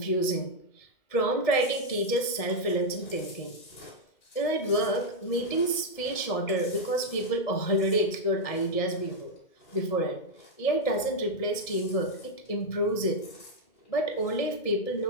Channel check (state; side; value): late; right; 1.7 ms